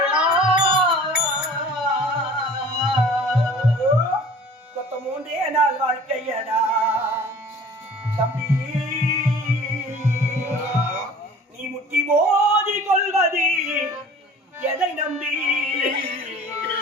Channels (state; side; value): normal; both; correlation 0.46